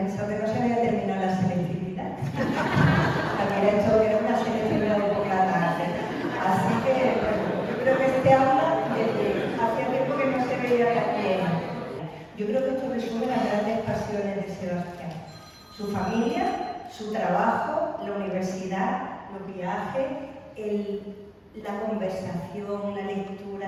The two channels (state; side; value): identical; both; correlation 1.00